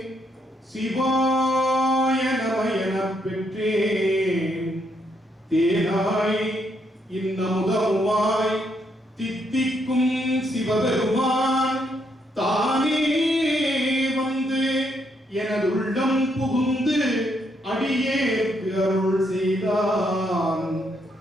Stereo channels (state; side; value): normal; both; correlation 0.75